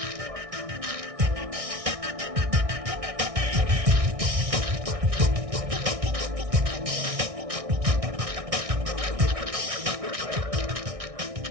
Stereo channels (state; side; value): late; left; 1.6 ms